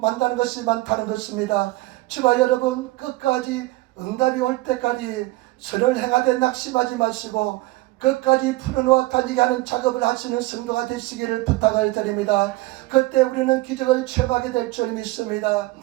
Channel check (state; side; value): quieter; left; 19.9 dB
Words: 것이 많다는 것입니다. 저와 여러분, 끝까지 응답이 올 때까지 선을 행하되 낙심하지 마시고 끝까지 풀어놓아 다니게 하는 작업을 하시는 성도가 되시기를 부탁을 드립니다. 그때 우리는 기적을 체험하게 될 줄 믿습니다.